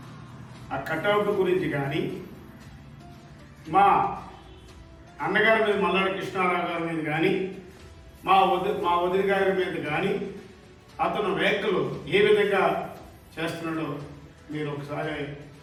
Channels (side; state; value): both; identical; correlation 1.00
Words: ఆ కటౌట్ గురించి కానీ మా అన్నగారి మీద మల్లాడి కృష్ణారావు గారి మీద కానీ మా వదిన గారి మీద కానీ అతను వ్యాఖ్యలు ఏ విధంగా చేస్తున్నాడో మీరు ఒకసారి